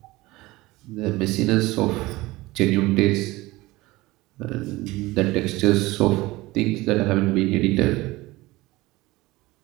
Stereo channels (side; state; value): left; quieter; 19.8 dB